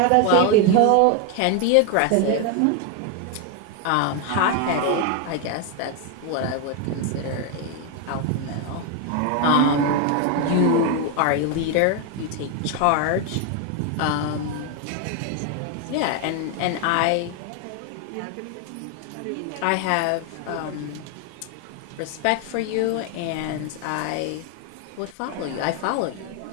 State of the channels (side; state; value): both; different; correlation 0.01